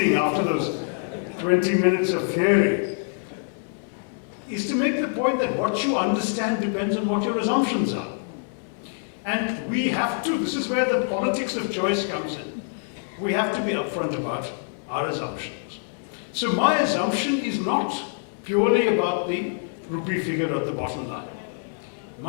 after those 20 minutes of theory, is to make the point that what you understand depends on what your assumptions are. And we have to, this is where the politics of choice comes in. We have to be upfront about our assumptions. So my assumption is not purely about the rupee figure at the bottom line.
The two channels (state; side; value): silent; right; digital silence